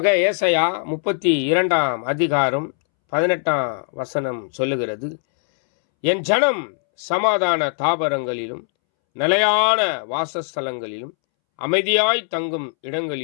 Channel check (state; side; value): silent; right; 65 dB below the other